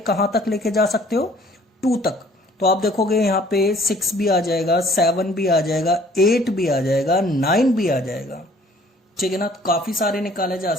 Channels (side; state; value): both; normal; correlation 0.57